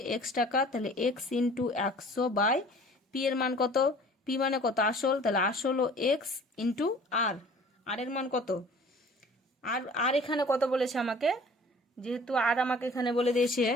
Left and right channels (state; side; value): normal; both; correlation 0.49